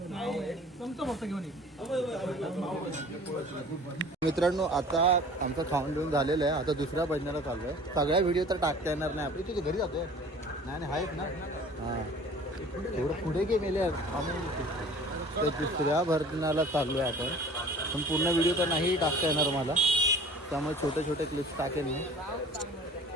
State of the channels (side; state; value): both; normal; correlation 0.46